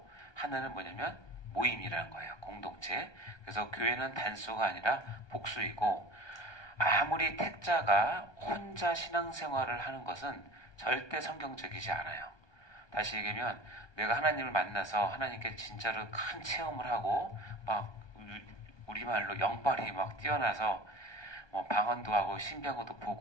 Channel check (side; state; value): right; late; 1.2 ms